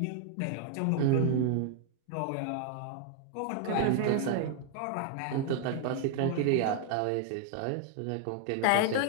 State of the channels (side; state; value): both; different; correlation 0.00